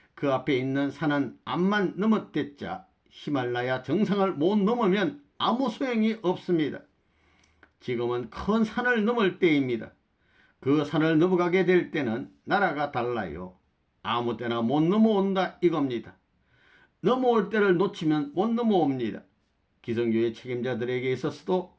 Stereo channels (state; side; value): identical; both; correlation 1.00